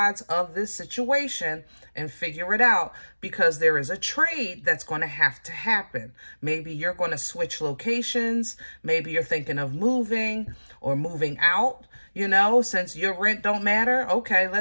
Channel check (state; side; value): inverted; both; correlation -1.00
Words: of this situation and figure it out, because there is a trade that's going to have to happen. Maybe you're going to switch locations. Maybe you're thinking of moving or moving out, you know, since your rent don't matter. Okay,